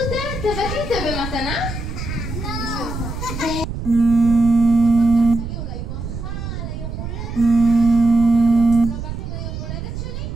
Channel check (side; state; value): right; noise; rumble, 7 dB below the sound